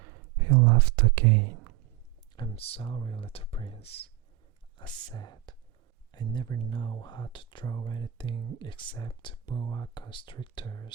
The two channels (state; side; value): quieter; left; 13.4 dB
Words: He laughed again. I'm sorry, little prince, I said. I never know how to draw anything except boa